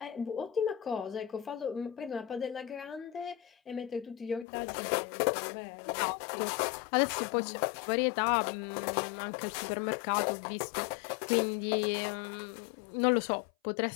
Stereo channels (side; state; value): right; drops out; at 4.5 s